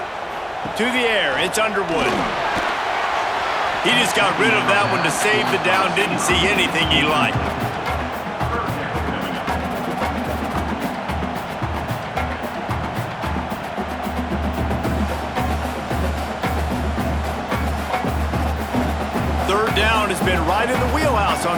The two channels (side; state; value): both; identical; correlation 1.00